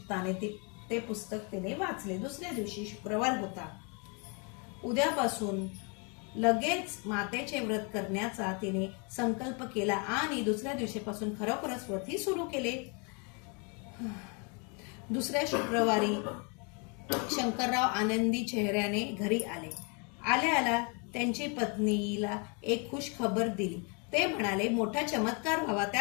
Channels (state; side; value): quieter; right; 33.9 dB